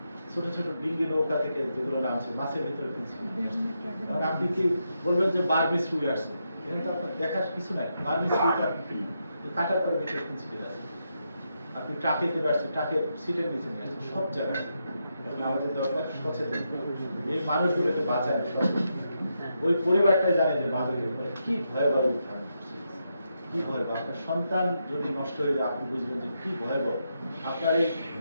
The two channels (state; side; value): inverted; both; correlation -0.83